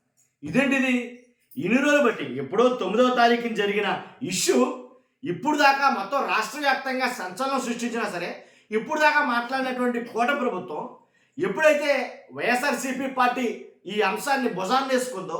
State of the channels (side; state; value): both; identical; correlation 1.00